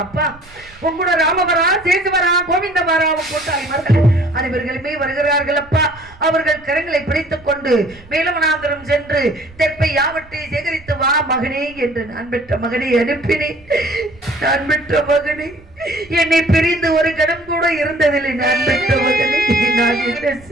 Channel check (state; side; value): noise; right; rumble, 24 dB below the sound